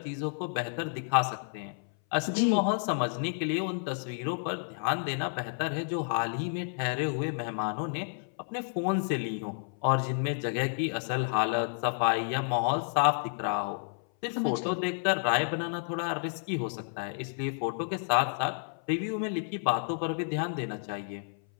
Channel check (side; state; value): right; silent; 57 dB below the other